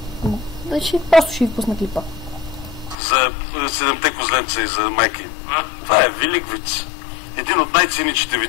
Просто ще ви пусна клипа. За 7-те козленца и за майки. Това е велик виц. Един от най-циничните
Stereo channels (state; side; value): drops out; right; at 3.0 s